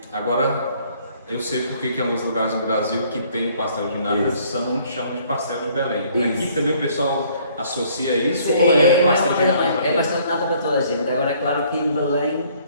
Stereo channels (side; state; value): both; inverted; correlation -0.61